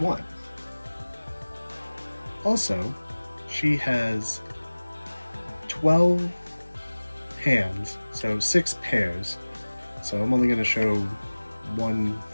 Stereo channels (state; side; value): inverted; both; correlation -1.00